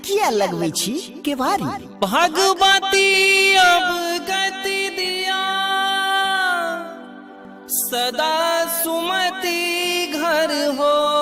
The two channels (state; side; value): identical; both; correlation 1.00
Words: किया लगबै छी केवारी, भगवती अब गति दिया, सदा सुमति घर